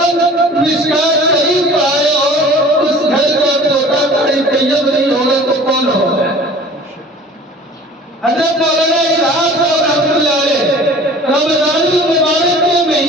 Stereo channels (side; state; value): both; normal; correlation 0.45